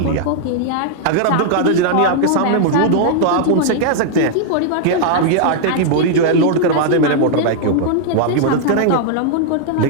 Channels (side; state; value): both; different; correlation -0.01